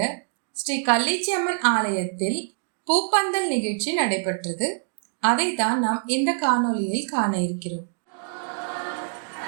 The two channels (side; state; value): left; silent; 62 dB below the other